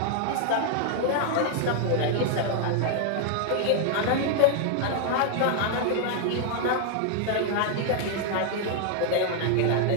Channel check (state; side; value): different; both; correlation 0.00